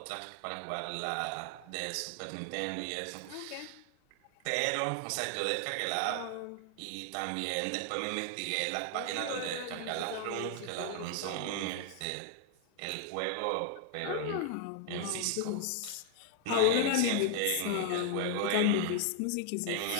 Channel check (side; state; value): both; different; correlation 0.00